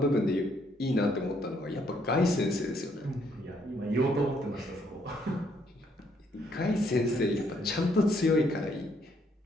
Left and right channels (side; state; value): both; normal; correlation 0.70